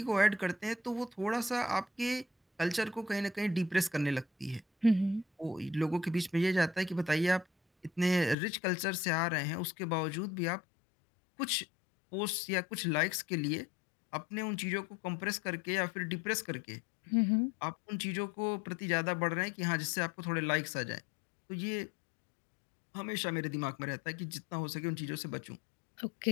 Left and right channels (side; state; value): right; drops out; at 8.3 s